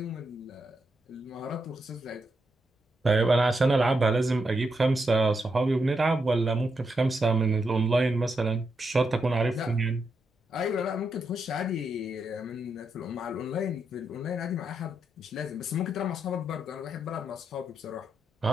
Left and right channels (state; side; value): normal; both; correlation 0.83